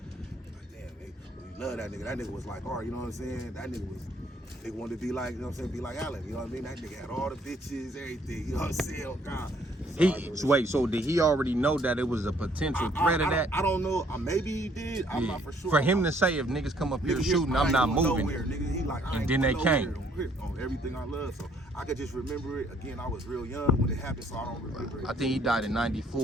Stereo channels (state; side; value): normal; both; correlation 0.64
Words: Like, damn, nigga, we love that nigga. That nigga was like, all right, you know what I'm saying? That nigga wanted to be like, you know what I'm saying, be like Allen, you know what I mean? That nigga had all the bitches, everything, you know what I'm saying, oh God. So did he already know that it was a potential threat of that? I don't know, maybe he did, I'm not for sure. For him to say, if niggas come up here shooting, I'm not moving. Nowhere, nigga. He like, and then they came. On everything I love, so I could just remember it. Again, I was real young when it happened, so I don't remember it. I think he died in